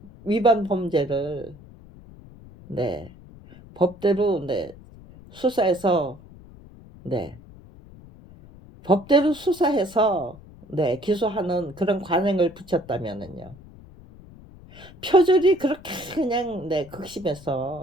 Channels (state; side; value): noise; left; rumble, 21 dB below the sound